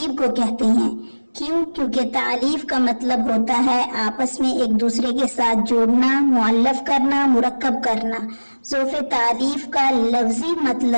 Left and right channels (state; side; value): inverted; both; correlation -1.00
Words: کو کہتے ہیں۔ کیوں؟ کیونکہ تعلیف کا مطلب ہوتا ہے آپس میں ایک دوسرے کے ساتھ جوڑنا، معلف کرنا، مرکب کرنا۔ ظوف تعلیف کا لفظی